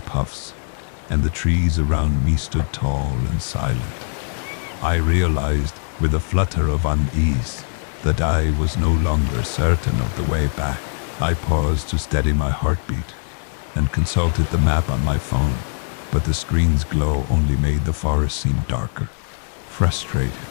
puffs, and the trees around me stood tall and silent. I realized, with a flutter of unease, that I was no longer certain of the way back. I paused to steady my heartbeat and consulted the map on my phone, but the screen's glow only made the forest seem darker. Frustrated,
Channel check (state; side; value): silent; right; digital silence